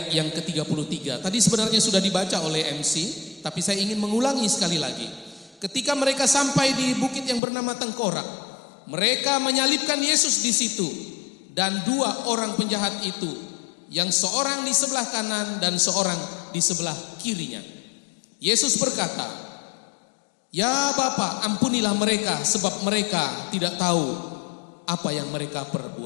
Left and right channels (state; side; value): drops out; right; at 7.4 s